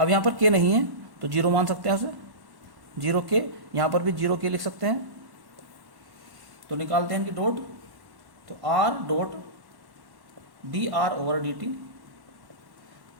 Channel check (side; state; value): left; late; 1.1 ms